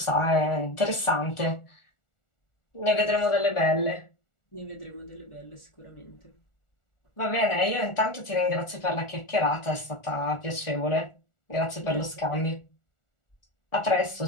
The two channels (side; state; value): right; late; 1.4 ms